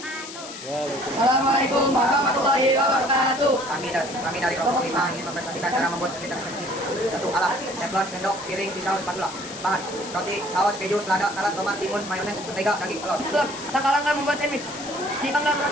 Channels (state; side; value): noise; left; hiss, 12 dB below the sound